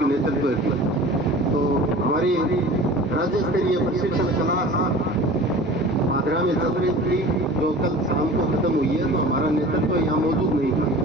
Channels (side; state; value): both; normal; correlation 0.41